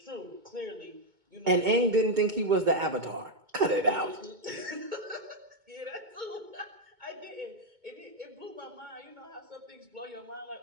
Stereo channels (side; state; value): left; late; 2.2 ms